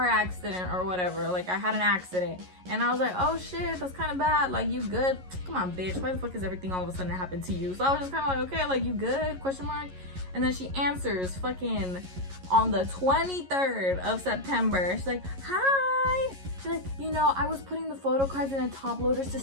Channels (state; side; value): late; left; 11 ms